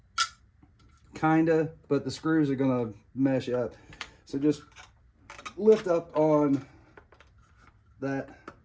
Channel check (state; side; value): identical; both; correlation 1.00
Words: kinda, but the screws are gonna mesh up. So just lift up on that,